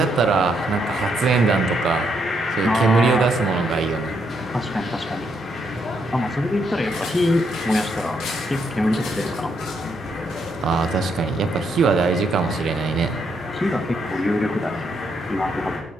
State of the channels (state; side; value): normal; both; correlation 0.76